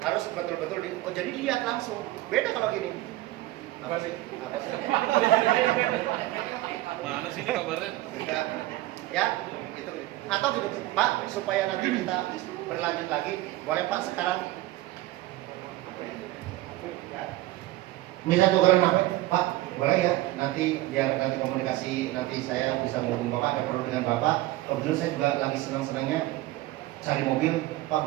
harus betul-betul jadi lihat langsung. Beda kalau gini. Apa sih? Mana sih ini kabarnya? Ya, gitu. Atau gitu, Pak, supaya nanti kita berlanjut lagi, boleh Pak sekarang? Ya. Bisa tukeran apa? Pak, boleh ya? Biar nanti komunikasi, nanti saya bisa menghubungi Bapak, ada perlu dengan Bapak. Kebetulan saya juga lagi senang-senangnya cari mobil. Pak,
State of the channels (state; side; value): quieter; left; 17.4 dB